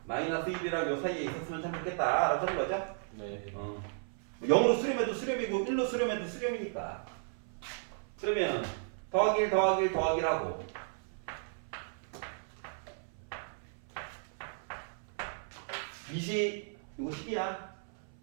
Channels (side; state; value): left; silent; 55 dB below the other